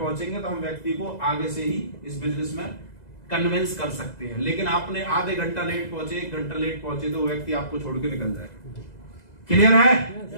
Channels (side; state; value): right; late; 2.0 ms